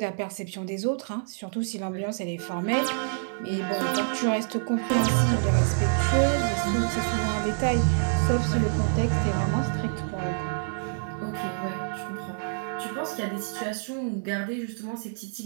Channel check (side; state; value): left; silent; 60 dB below the other